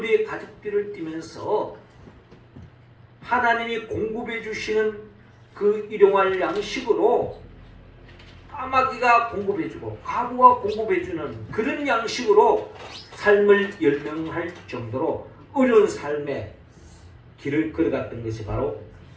가죽띠를 띠면서 하나님이 공급해 주시는 그 일용할 양식으로 까마귀가 공급해주고 과부가 공급해주는 그런 양식으로 삶을 열명할 정도로 어려운 삶의 길을 걸어갔던 것이 바로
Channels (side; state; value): both; identical; correlation 1.00